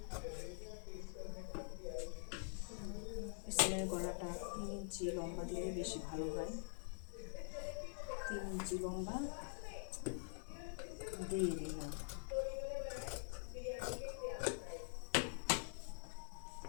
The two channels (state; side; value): silent; right; digital silence